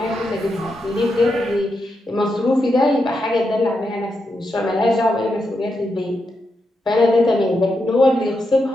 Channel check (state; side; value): normal; both; correlation 0.85